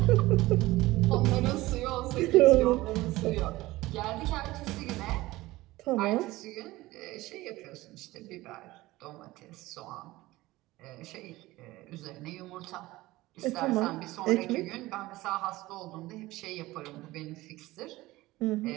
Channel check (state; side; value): quieter; left; 18.6 dB